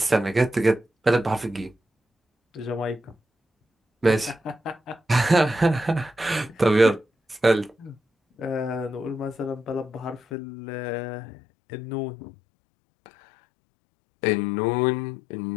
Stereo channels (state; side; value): drops out; right; at 10.4 s